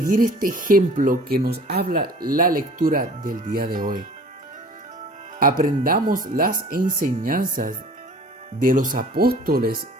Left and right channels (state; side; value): normal; both; correlation 0.47